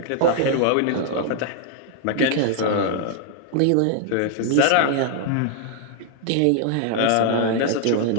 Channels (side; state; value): both; different; correlation 0.00